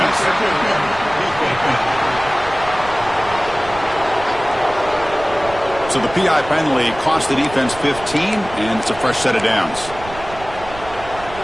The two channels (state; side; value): noise; right; rumble, 15 dB below the sound